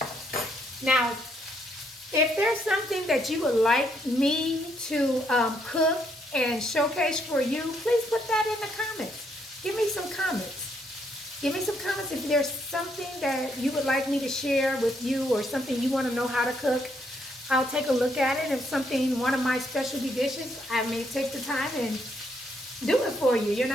Now, if there's something that you would like me to cook and showcase for you, please put that in the comments. Give me some comments. Give me some comments if there's something that you would like me to share with you or something you want to know how to cook. I'll take a look at it. If something, one of my specialty dishes, I may take the time and do it for you,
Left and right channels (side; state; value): both; normal; correlation 0.73